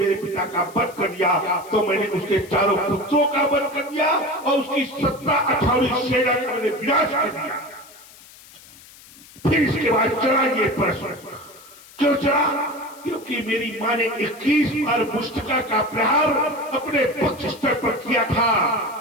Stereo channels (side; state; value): left; noise; hiss, 22 dB below the sound